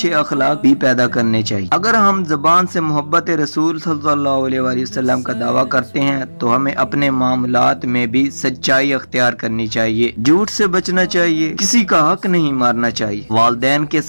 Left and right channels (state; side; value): inverted; both; correlation -1.00